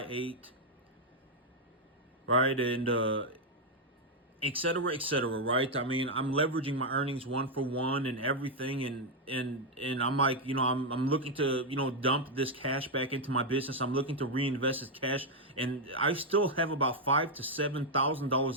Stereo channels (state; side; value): normal; both; correlation 0.01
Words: 8, right? And et cetera, et cetera, right? I mean, I'm leveraging my earnings one for one and everything. And I'm like, I'm looking to, dump this cash back into my business. I'm looking to reinvest this cash. And I still have about $5,000 to